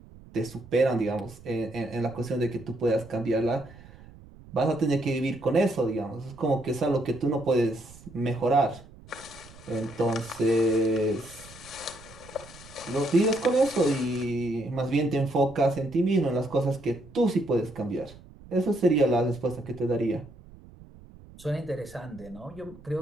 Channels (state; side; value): noise; right; rumble, 21 dB below the sound